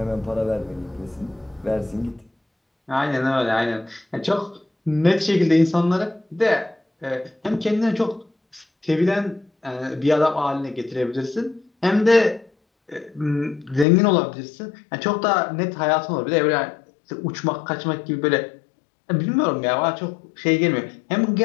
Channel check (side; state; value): right; drops out; at 13.9 s